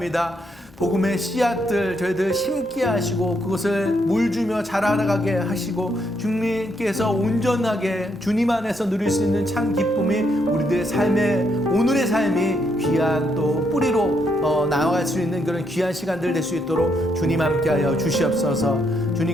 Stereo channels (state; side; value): normal; both; correlation 0.76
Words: 복음의 씨앗들 저희들 심게 하시고 그것을 물주며 자라나가게 하시고 주님께서 온전하게 주님 안에서 누릴 수 있는 참 기쁨이 우리들의 삶의 오늘의 삶이 귀한 또 뿌리로 나아갈 수 있는 그런 귀한 시간들 될 수 있도록 주님 함께하여 주시옵소서.